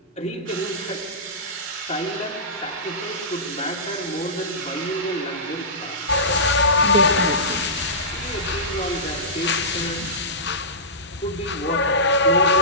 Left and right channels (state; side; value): normal; both; correlation -0.19